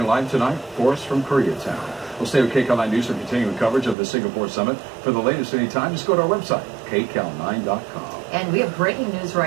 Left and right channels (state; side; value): drops out; left; at 4.0 s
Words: live tonight for us from Koreatown. We'll stay with KCAL 9 News for continuing coverage of the Singapore Summit. For the latest anytime, just go to our website, kcal9.com. And we have breaking news